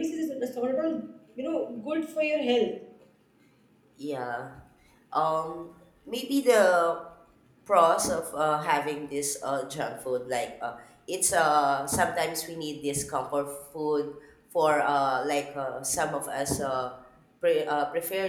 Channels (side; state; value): both; identical; correlation 1.00